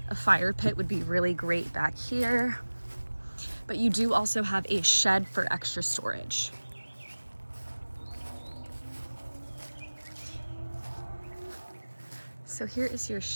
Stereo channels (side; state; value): both; inverted; correlation -1.00